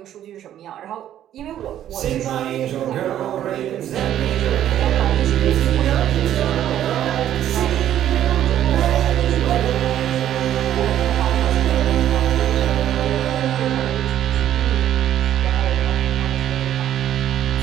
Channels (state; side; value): quieter; left; 11.4 dB